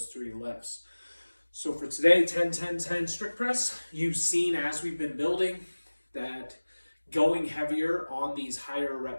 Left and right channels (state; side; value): inverted; both; correlation -1.00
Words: three lifts. So for today, 10, 10, 10 strict press, you've seen as we've been building that going heavier on these higher